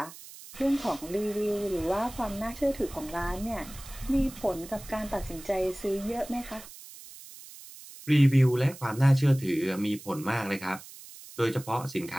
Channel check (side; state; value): right; noise; hiss, 17 dB below the sound